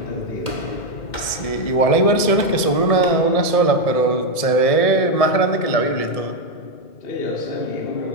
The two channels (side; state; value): right; late; 1.7 ms